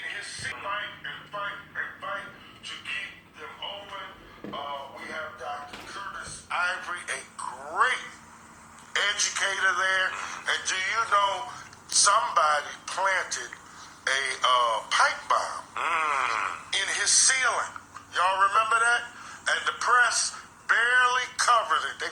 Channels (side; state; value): both; identical; correlation 1.00